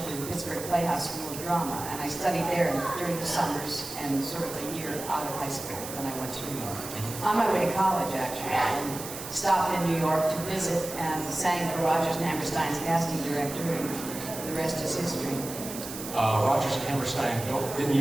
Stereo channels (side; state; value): right; noise; hiss, 10 dB below the sound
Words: in the Pittsburgh Playhouse School of Drama, and I studied there during the summers and sort of a year out of high school when I went to New York. On my way to college, actually, and stopped in New York to visit and sang for Rodgers and Hammerstein's casting director, and the rest is history. Rodgers and Hammerstein didn't